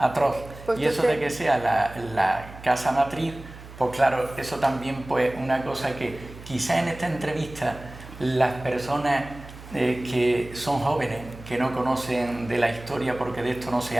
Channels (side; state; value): right; noise; hum, 16 dB below the sound